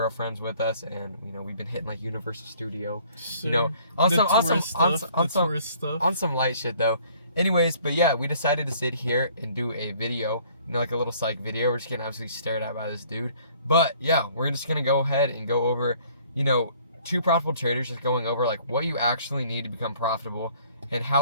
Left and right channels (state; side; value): inverted; both; correlation -0.57